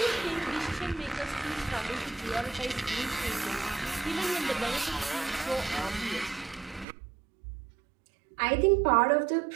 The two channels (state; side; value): drops out; left; at 6.9 s